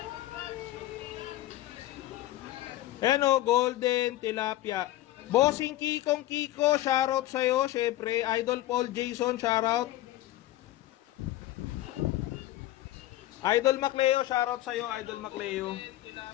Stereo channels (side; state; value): right; quieter; 15.4 dB